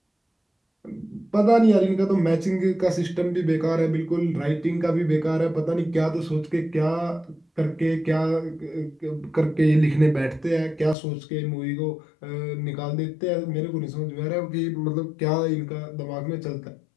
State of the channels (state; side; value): drops out; right; at 11.0 s